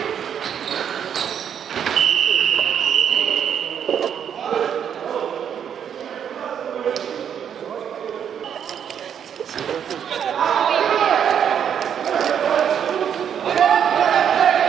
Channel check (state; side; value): quieter; left; 8.5 dB